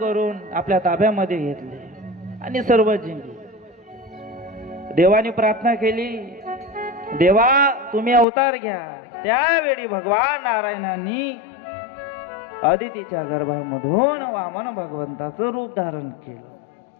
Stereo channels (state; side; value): drops out; right; at 8.2 s